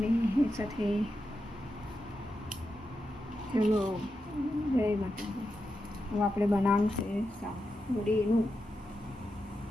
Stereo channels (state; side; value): normal; both; correlation 0.88